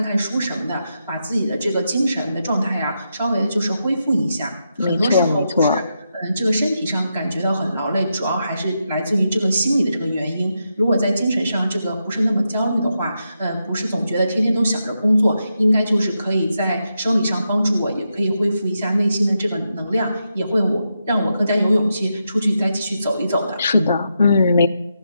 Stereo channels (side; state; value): both; inverted; correlation -0.85